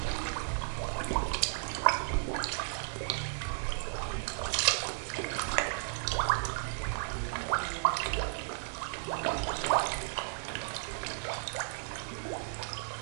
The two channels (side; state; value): left; silent; digital silence